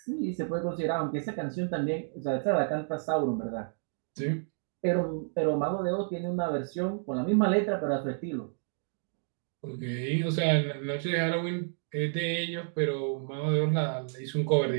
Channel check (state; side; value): silent; left; digital silence